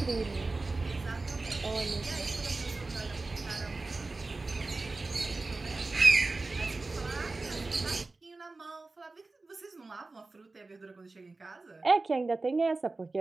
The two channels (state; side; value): quieter; left; 3.5 dB